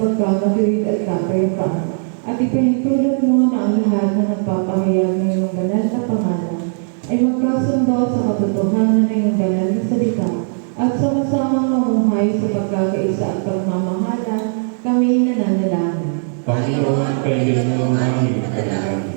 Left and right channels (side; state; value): left; silent; digital silence